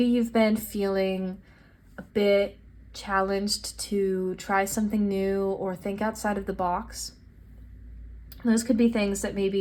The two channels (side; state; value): both; identical; correlation 1.00